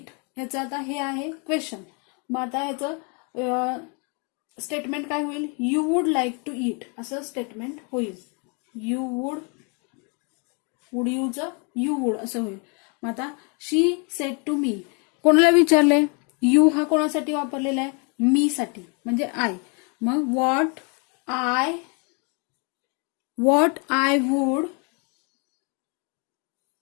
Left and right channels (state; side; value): quieter; right; 35.0 dB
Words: ह्याचं आता हे आहे क्वेश्चन, मग आता ह्याचं स्टेटमेंट काय होईल, you would like to eat असं स्टेटमेंट होईल, यू वुड यूचं यू वुड असं होईल. मग आता शी सेड टू मी, कोणाला विचारलंय, यू हा कोणासाठी वापरलेला आहे, मी साठी म्हणजे आय, मग what I would